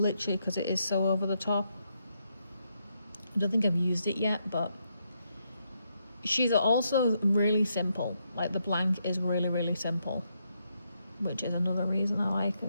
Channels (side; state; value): both; inverted; correlation -0.79